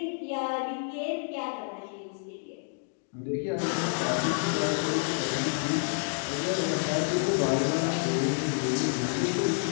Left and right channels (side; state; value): right; silent; 58 dB below the other